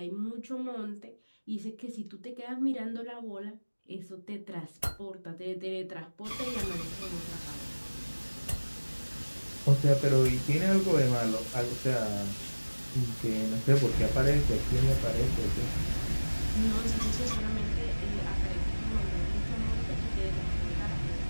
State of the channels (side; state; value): both; inverted; correlation -1.00